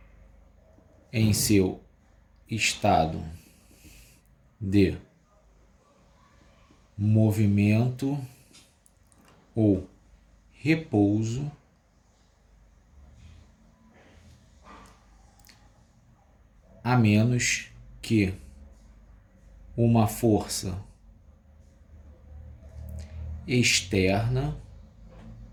em seu estado de movimento ou repouso a menos que uma força externa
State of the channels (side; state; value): both; identical; correlation 1.00